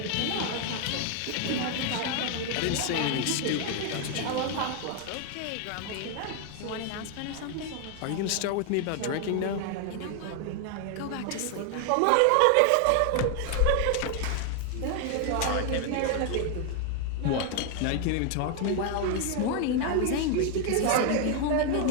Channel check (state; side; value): different; both; correlation 0.00